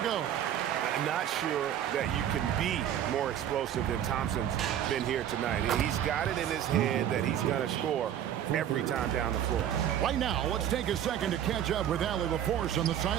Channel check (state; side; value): quieter; left; 10.3 dB